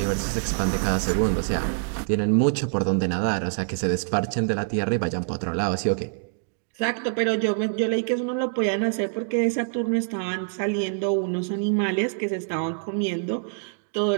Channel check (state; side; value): silent; left; digital silence